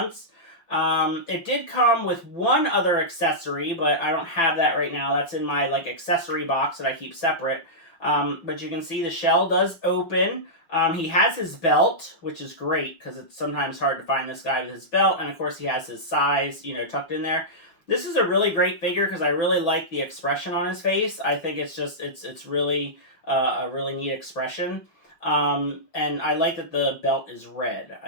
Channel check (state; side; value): late; right; 6.0 ms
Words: It did come with one other accessory, but I don't have that right now. That's in my, like, accessory box that I keep separate. But you can see the shell does open. He has his belt, which is great, because it's sometimes hard to find this guy with his belt. And, of course, he has his size, you know, tucked in there. This is a really great figure because I really like the expression on his face. I think it's just, it's really a really neat expression. And I like that the belt is red.